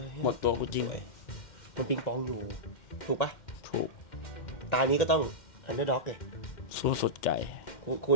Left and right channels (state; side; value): late; right; 2.1 ms